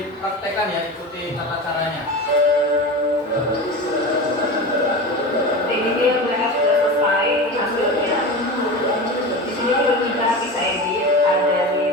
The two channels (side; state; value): both; normal; correlation 0.28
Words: ya, ikuti tata caranya. Ini dia mereka sudah selesai hasilnya. Di sini juga kita bisa edit, ada di